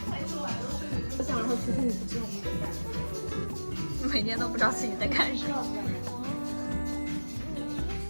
我想说，其实你不知道你在干什么，每天都不知道自己在干什么。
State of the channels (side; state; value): both; inverted; correlation -1.00